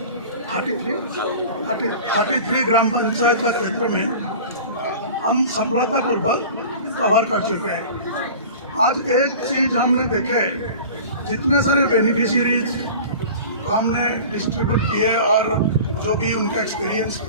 33 ग्राम पंचायत का क्षेत्र में हम सफलतापूर्वक कवर कर चुके हैं। आज एक चीज हमने देखे, जितने सारे बेनिफिशियरीज हमने डिस्ट्रीब्यूट किए और जो भी उनका एक्सपीरियंस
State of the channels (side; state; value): both; inverted; correlation -0.38